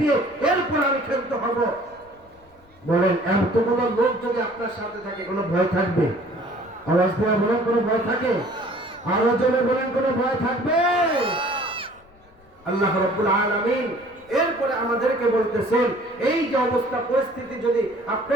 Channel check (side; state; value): left; noise; rumble, 29 dB below the sound